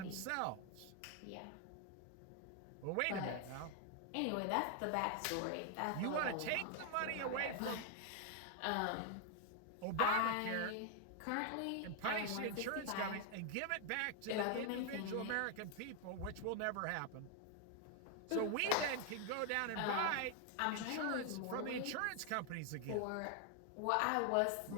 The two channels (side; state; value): both; different; correlation 0.00